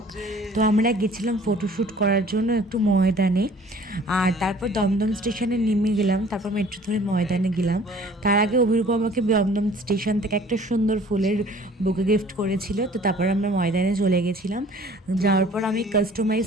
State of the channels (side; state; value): both; normal; correlation 0.51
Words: তো আমরা গেছিলাম ফটোশ্যুট করার জন্য একটু ময়দানে, আর তারপর দমদম স্টেশনে নেমে গেলাম, তারপর মেট্রো ধরে ময়দানে গেলাম। তার আগে অভিরূপ আমাকে দমদম স্টেশন থেকে একটা সুন্দর ফুলের বুকে গিফট করেছিল। তো তারপর আমরা ময়দানে চলে গেছিলাম। যাওয়ার পর আমি কাস্টমাইজ